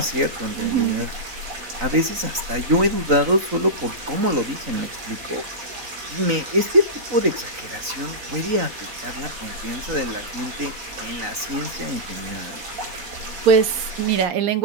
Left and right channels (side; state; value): left; late; 3.9 ms